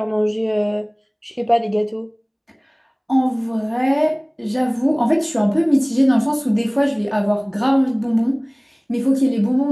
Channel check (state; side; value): identical; both; correlation 1.00